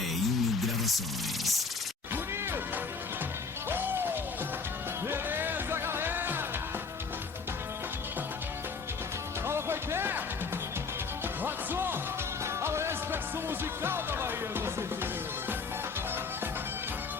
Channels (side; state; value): right; quieter; 4.8 dB